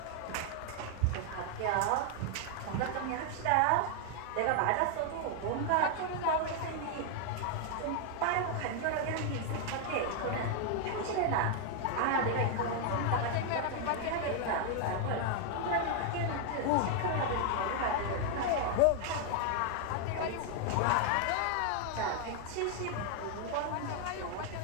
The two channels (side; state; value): both; different; correlation 0.00